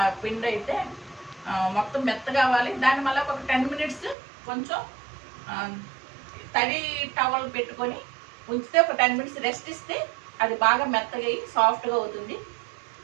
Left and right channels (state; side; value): drops out; left; at 4.2 s